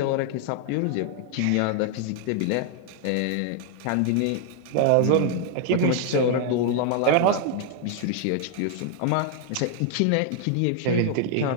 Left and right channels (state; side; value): different; both; correlation 0.00